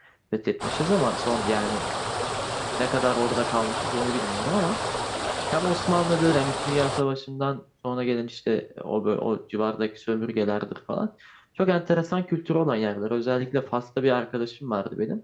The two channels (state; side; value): identical; both; correlation 1.00